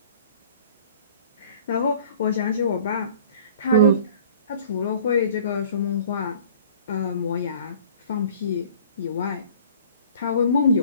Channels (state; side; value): inverted; both; correlation -0.49